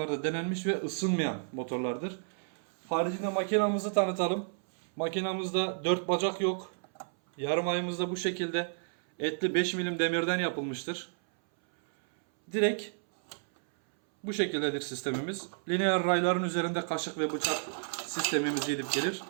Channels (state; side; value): silent; left; 57 dB below the other